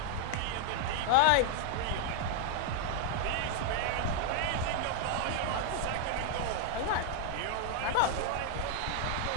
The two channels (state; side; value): different; both; correlation 0.00